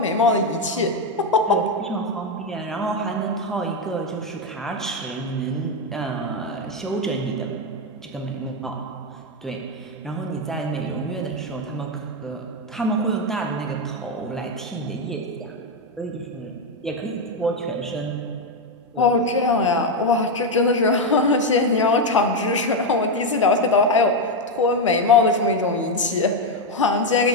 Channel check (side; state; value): both; normal; correlation 0.06